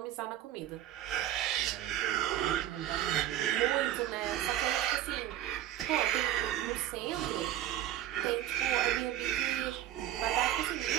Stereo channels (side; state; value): left; quieter; 12.6 dB